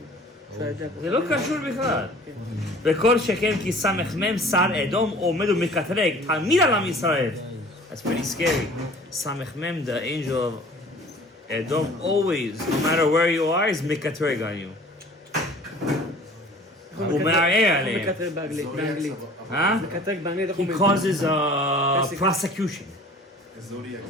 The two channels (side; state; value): both; normal; correlation 0.48